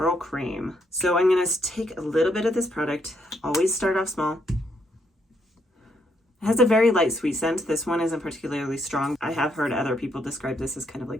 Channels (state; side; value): normal; both; correlation 0.74